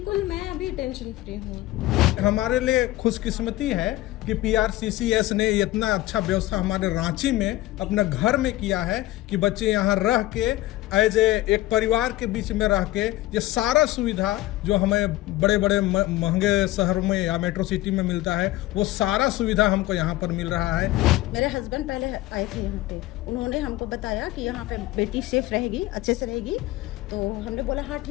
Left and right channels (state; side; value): quieter; right; 16.9 dB